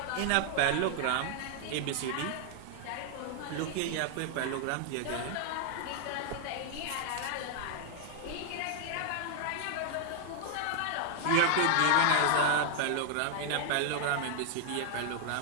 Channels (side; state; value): both; different; correlation 0.00